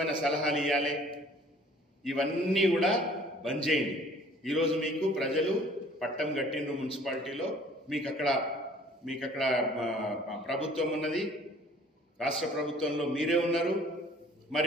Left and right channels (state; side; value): normal; both; correlation 0.54